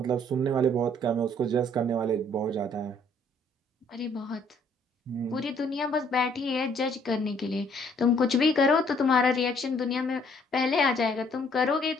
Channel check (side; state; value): both; normal; correlation 0.63